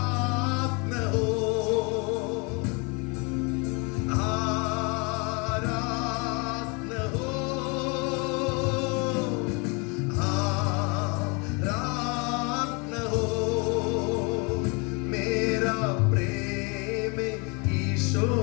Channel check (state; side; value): quieter; right; 31.3 dB